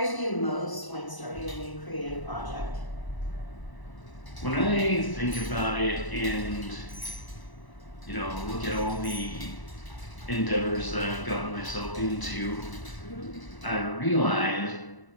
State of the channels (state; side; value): late; right; 1.0 ms